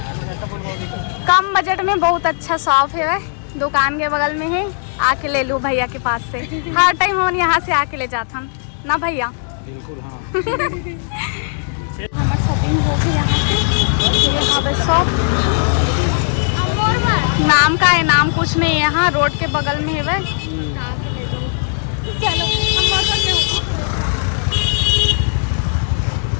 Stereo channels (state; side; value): silent; right; 68 dB below the other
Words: कम बजट में बहुत अच्छा शॉप है दुकान के बगल में है आके ले लो भैया के पास से हर टाइम हम यहाँ से आके ले जाता हम ना भैया बिल्कुल हाँ हमारा शॉपिंग हो गई यहाँ से ये हवे शॉप नाम का है नाम कुछ नहीं यहाँ रोड के बगल में है वह चलो